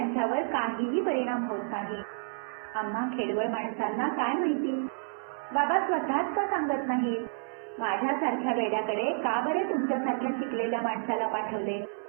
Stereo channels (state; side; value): silent; left; 58 dB below the other